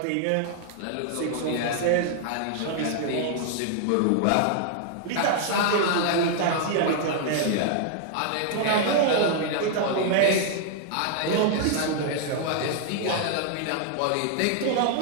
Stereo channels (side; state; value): both; different; correlation 0.00